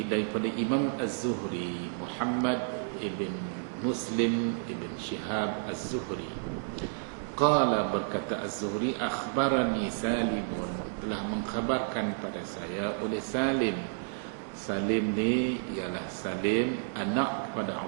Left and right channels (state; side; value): silent; left; digital silence